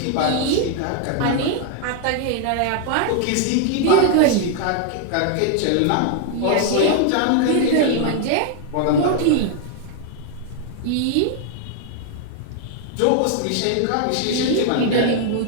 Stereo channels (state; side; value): different; both; correlation 0.00